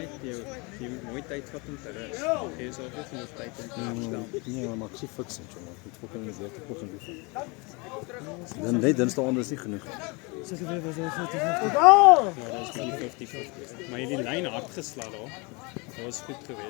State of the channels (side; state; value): right; quieter; 28.6 dB